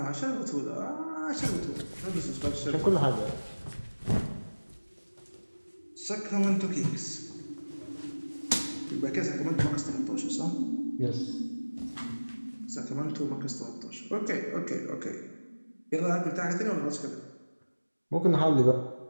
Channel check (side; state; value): both; inverted; correlation -1.00